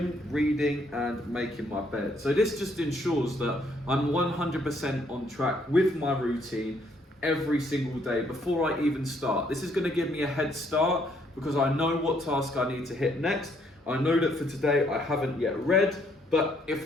reading, and making my bed. So this just ensures that I'm 100% on track with my routine every single day before I even start. This is going to give me a head start because I know what task I need to hit next. I know that for today I haven't yet read, but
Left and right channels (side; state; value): both; normal; correlation 0.69